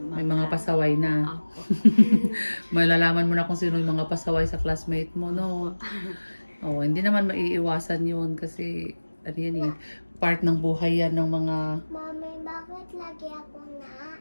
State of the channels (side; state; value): both; inverted; correlation -1.00